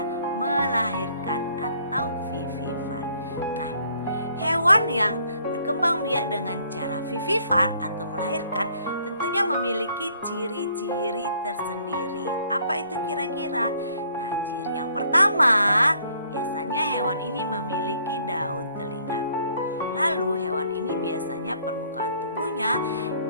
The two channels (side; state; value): both; inverted; correlation -0.63